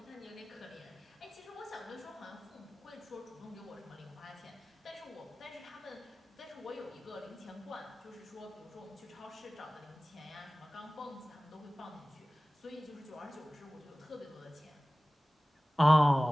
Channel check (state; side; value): normal; both; correlation 0.98